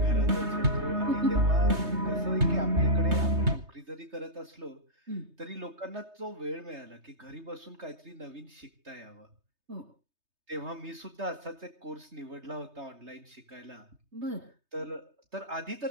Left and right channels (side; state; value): left; late; 3.3 ms